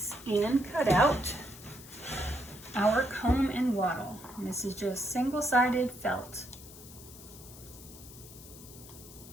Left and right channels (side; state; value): left; noise; hiss, 17 dB below the sound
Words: and cut out our comb and wattle. And this is just single-sided felt.